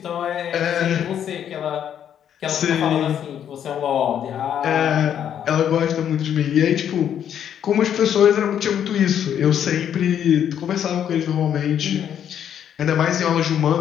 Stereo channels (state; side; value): quieter; right; 9.4 dB